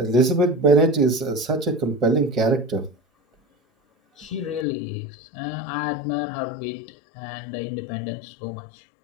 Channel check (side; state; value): right; drops out; at 4.7 s